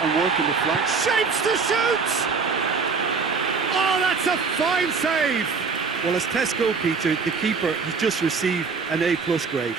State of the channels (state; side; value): quieter; left; 5.1 dB